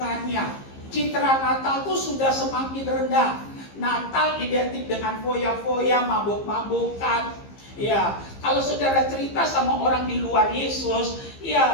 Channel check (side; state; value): right; late; 15 ms